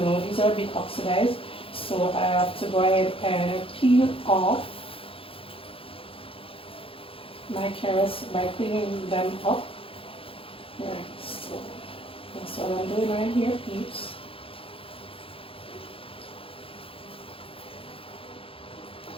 these are a bit oxidized. So I have to go ahead and peel off my carrots by cleaning them up. Right, so that's what I'm doing right here, peeps.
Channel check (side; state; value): right; late; 0.27 ms